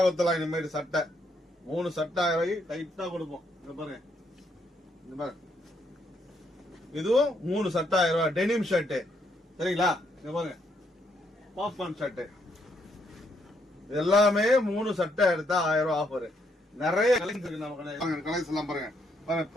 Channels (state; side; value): normal; both; correlation 0.74